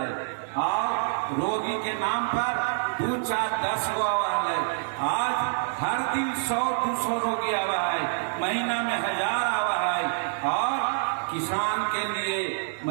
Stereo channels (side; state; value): left; silent; digital silence